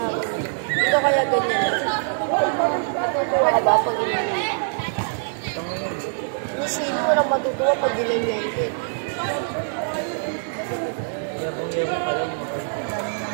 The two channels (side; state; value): left; silent; digital silence